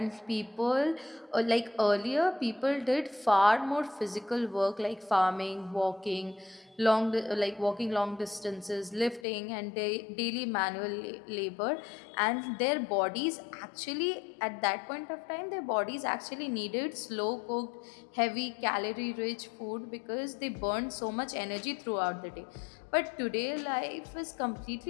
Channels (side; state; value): right; drops out; at 9.2 s